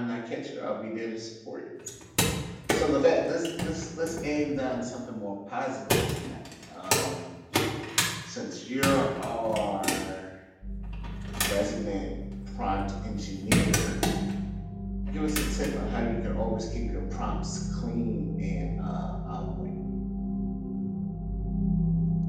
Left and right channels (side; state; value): both; identical; correlation 1.00